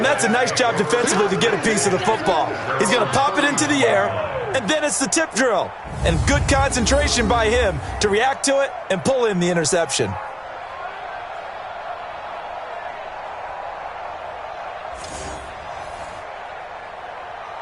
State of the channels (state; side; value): identical; both; correlation 1.00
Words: that's a nice job defensively to get a piece of the football. He's going to pop it into the air, and then it's the tip drill. And good concentration by him to react to it and pull in the interception.